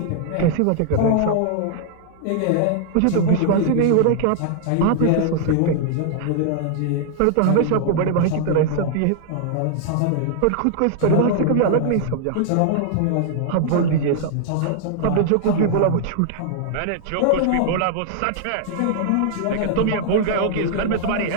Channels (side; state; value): both; different; correlation -0.01